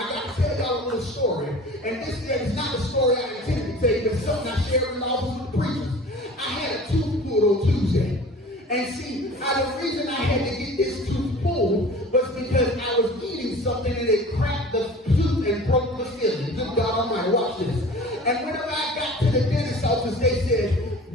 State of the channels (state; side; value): normal; both; correlation 0.42